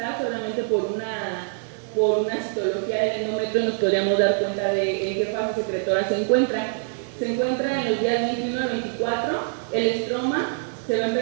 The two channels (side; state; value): left; silent; 56 dB below the other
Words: solamente por una citología del endometrio nos podríamos dar cuenta de en qué fase secretora se encuentra. Se encuentra en los días 21 a 24, el estroma se va a